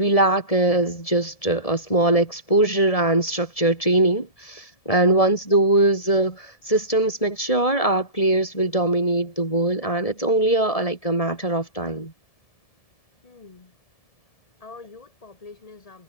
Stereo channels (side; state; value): right; late; 1.7 ms